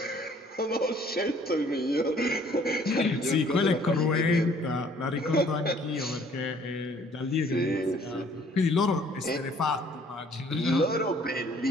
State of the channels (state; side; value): normal; both; correlation 0.58